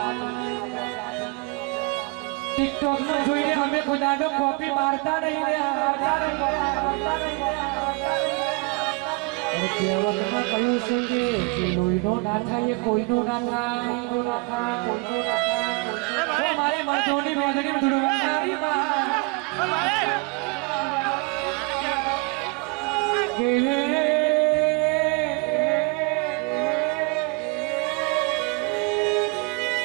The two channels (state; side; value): quieter; left; 27.8 dB